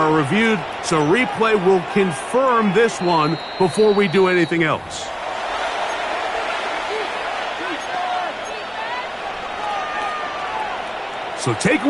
reviewed, so replay will confirm this one before we do anything else. So take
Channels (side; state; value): both; identical; correlation 1.00